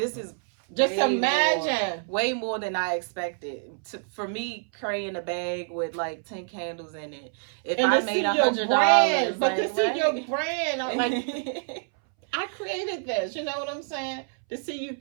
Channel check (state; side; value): silent; left; 60 dB below the other